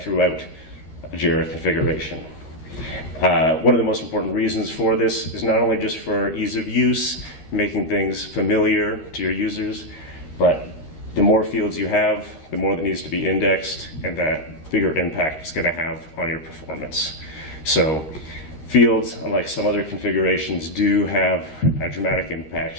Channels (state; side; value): late; right; 13 ms